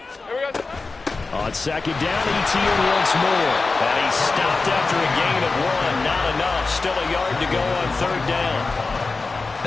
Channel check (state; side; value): quieter; right; 3.9 dB